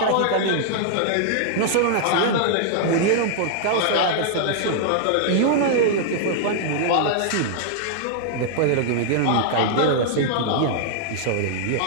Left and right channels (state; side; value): different; both; correlation -0.01